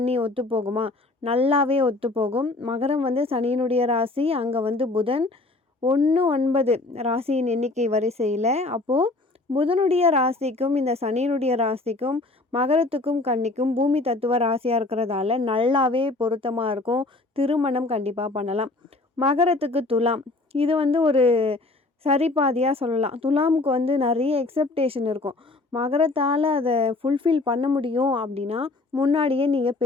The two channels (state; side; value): quieter; right; 3.2 dB